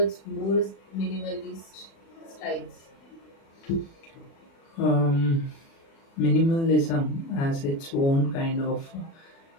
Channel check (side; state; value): right; late; 36 ms